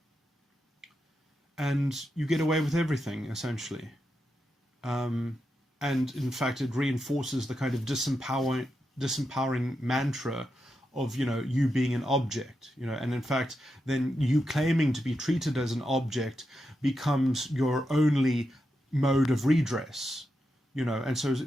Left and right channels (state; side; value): normal; both; correlation 0.87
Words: and you get away with everything, essentially. And in fact, it reinforces the kind of disempowering mantra of, you being an object, and in fact, then you claiming to be treated as an object becomes your only mode of redress, and so